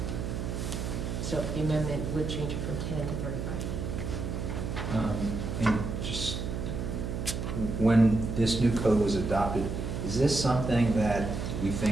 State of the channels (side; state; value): right; noise; hum, 4 dB below the sound